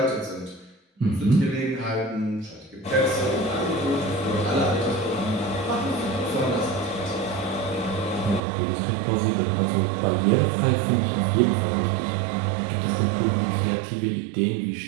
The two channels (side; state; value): left; drops out; at 8.4 s